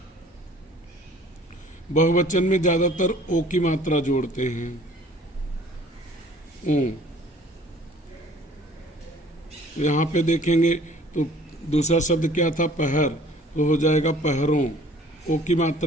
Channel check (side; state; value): both; normal; correlation 0.53